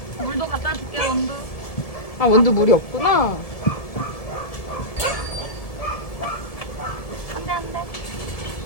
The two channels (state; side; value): late; right; 1.7 ms